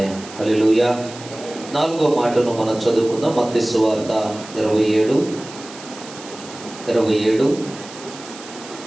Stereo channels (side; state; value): right; noise; hiss, 16 dB below the sound